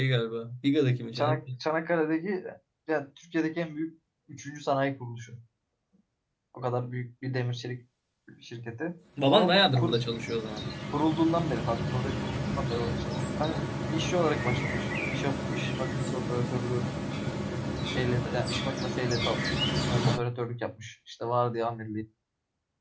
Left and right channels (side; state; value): both; identical; correlation 1.00